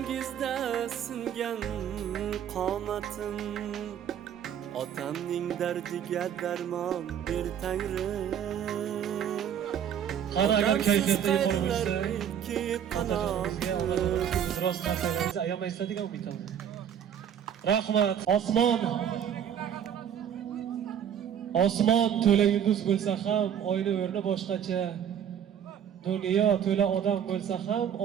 singan qomatim. Otamning dardiga darmon ber Tangrim. Qani agar kayfiyatda yuqori bo'lsa, rost narsalarni ayamaysiz degan umiddaman. Rahmat. Osmon to'la yulduz bo'lsa ham oyni o'rni boshqacha. Dunyo to'la odam bo'lsa ham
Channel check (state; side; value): quieter; left; 9.1 dB